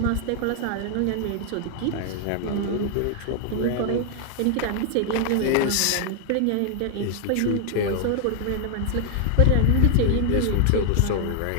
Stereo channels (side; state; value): both; different; correlation 0.00